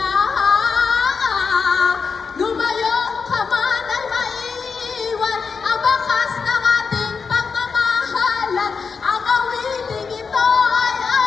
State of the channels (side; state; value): right; quieter; 5.3 dB